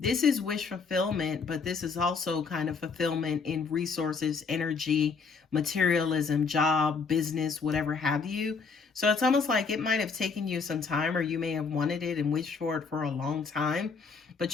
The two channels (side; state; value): right; quieter; 5.1 dB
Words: this is wish fulfillment, but this is also kind of fulfillment in resources, energy, materialism, job, business, whatever have you. So it's almost like it might have taken you some time, or you may have wanted it and wished for it for a long time,